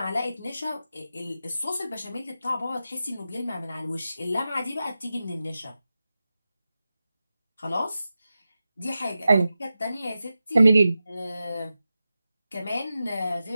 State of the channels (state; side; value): inverted; both; correlation -0.93